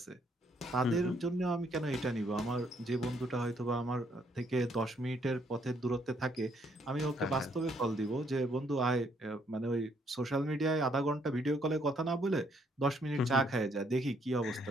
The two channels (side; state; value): both; normal; correlation 0.69